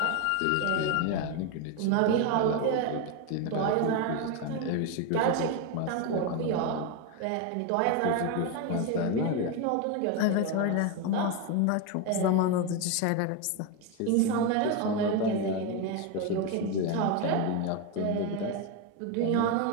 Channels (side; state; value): both; different; correlation 0.02